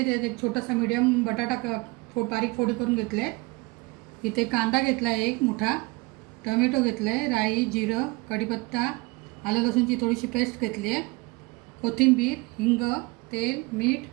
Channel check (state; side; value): quieter; left; 25.1 dB